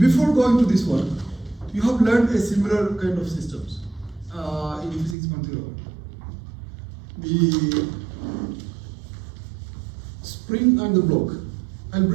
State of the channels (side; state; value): left; drops out; at 5.2 s